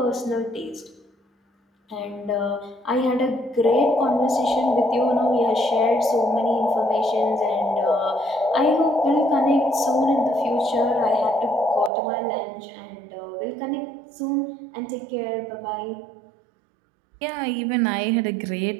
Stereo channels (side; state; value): left; drops out; at 11.9 s